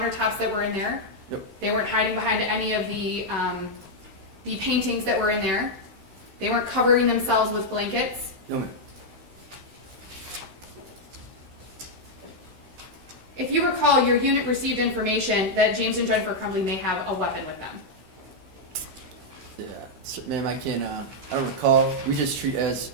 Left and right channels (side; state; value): left; late; 16 ms